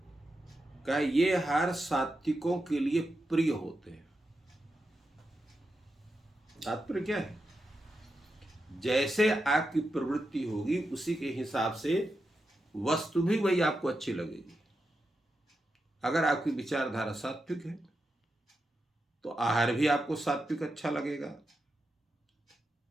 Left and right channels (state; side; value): normal; both; correlation 0.88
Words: कहा ये आहार सात्विकों के लिए प्रिय होते हैं। तात्पर्य क्या है? जैसे आपकी प्रवृत्ति होगी उसी के हिसाब से वस्तु भी वही आपको अच्छी लगेगी। अगर आपकी विचारधारा सात्विक है तो आहार भी आपको सात्विक अच्छा लगेगा।